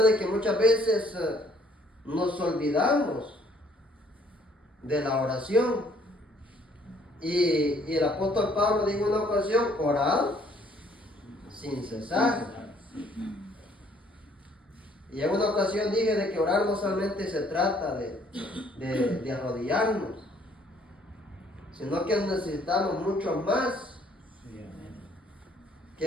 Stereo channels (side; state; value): both; normal; correlation 0.62